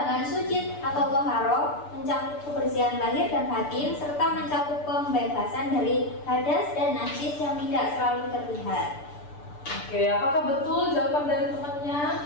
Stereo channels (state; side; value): late; right; 6.8 ms